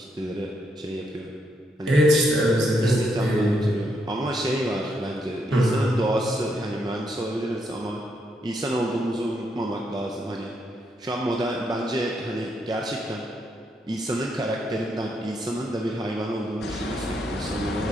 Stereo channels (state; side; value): normal; both; correlation 0.78